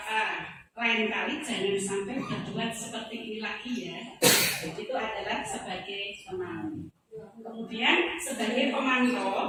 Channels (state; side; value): identical; both; correlation 1.00